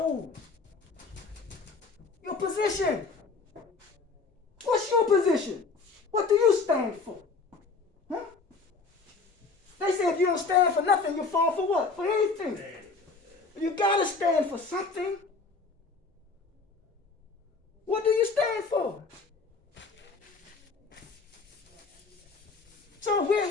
Your position. What's your position? What do you stand for? Huh? They say if you don't stand for nothing, you fall for what? For anything. You gotta stand for something. What do you stand for? So we're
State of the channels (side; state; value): right; quieter; 4.3 dB